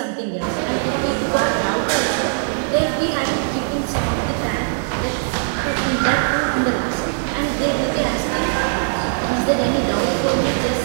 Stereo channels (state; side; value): silent; left; digital silence